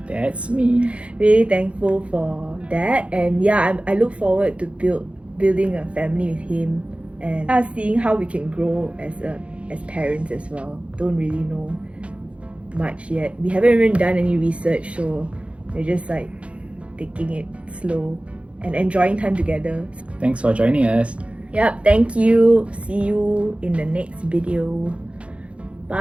that's me. Really thankful for that. And yeah, I look forward to building a family with him, and seeing how we can grow as parents as well. Don't really know much yet. We haven't even done any research, so we're just like taking it slow and enjoying time together. Thanks for joining us. Yep, thank you. See you in the next video.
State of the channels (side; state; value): left; late; 0.061 ms